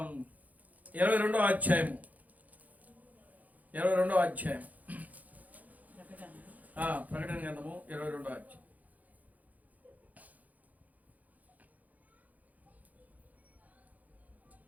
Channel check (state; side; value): late; left; 0.078 ms